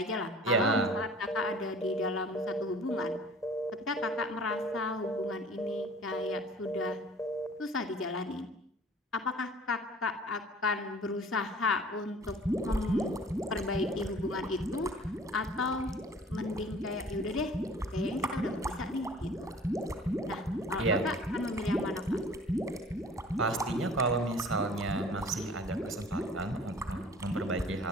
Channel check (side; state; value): both; normal; correlation 0.48